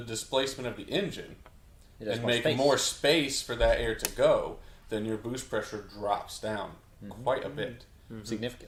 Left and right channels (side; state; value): both; identical; correlation 1.00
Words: of the engine and make more space for that air to go, then your boost pressure drops down quite a bit.